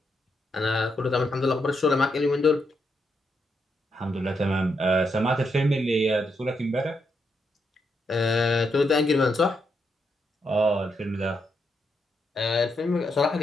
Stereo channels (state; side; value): normal; both; correlation 0.80